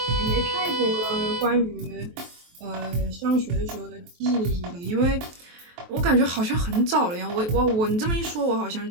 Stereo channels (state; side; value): late; left; 23 ms